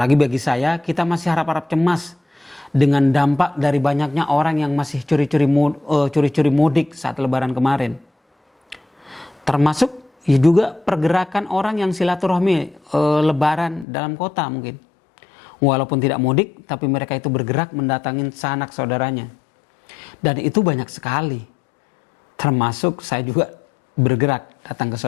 bagi saya, kita masih harap-harap cemas dengan dampak dari banyaknya orang yang masih curi-curi mudik saat lebaran kemarin. Termasuk ya juga pergerakan orang yang silaturahmi lebaran dalam kota mungkin. Walaupun tidak mudik, tapi mereka itu bergerak mendatangin sanak saudaranya. Dan itu banyak sekali. Termasuk saya juga bergerak datang ke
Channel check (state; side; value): drops out; right; at 13.9 s